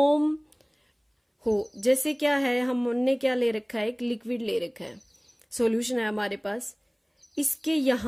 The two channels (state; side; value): identical; both; correlation 1.00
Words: हो। जैसे क्या है, हमने क्या ले रखा है, एक लिक्विड ले रखा है, सॉल्यूशन है हमारे पास, इसके